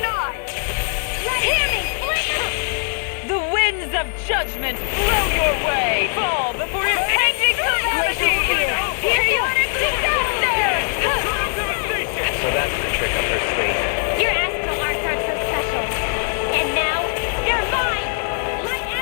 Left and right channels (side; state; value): right; silent; digital silence